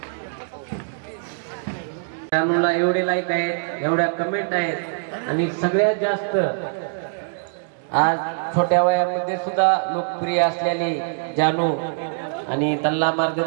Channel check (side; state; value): left; silent; digital silence